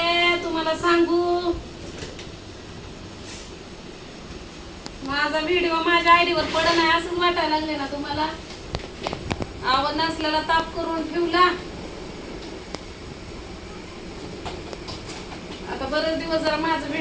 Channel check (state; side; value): identical; both; correlation 1.00